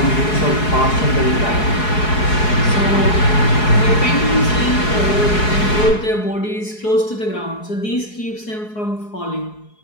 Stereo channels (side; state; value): right; late; 4.7 ms